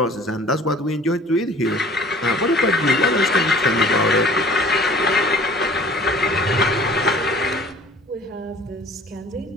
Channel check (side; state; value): both; normal; correlation 0.49